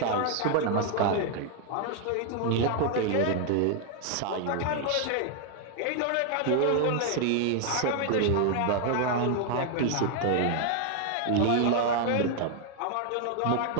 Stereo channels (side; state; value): both; different; correlation 0.00